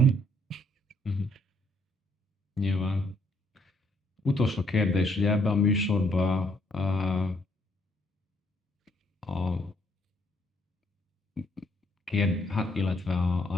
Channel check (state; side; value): normal; both; correlation 0.68